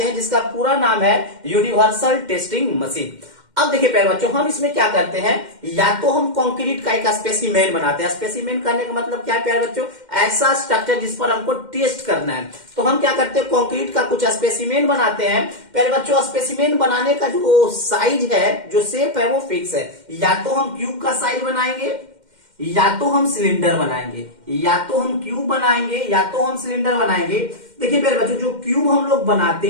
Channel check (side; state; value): left; late; 2.1 ms